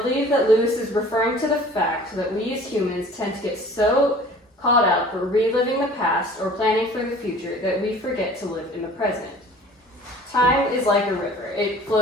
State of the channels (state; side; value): normal; both; correlation 0.47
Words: that Lewis is referring to the fact that we as humans tend to get so caught up reliving the past or planning for the future that we forget to live in the present. Time is like a river. It